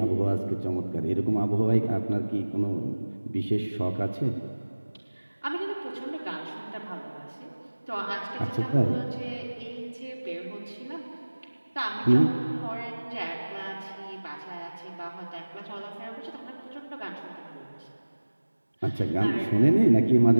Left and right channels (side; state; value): both; inverted; correlation -1.00